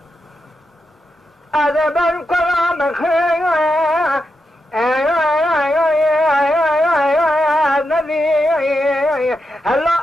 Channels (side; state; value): both; normal; correlation 0.86